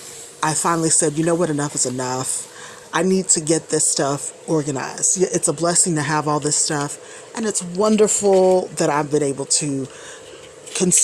I finally said, you know what, enough is enough. I need to get this stuff organized. Yeah, it's a blessing to have all this stuff, and it's wonderful that I've been able to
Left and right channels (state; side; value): identical; both; correlation 1.00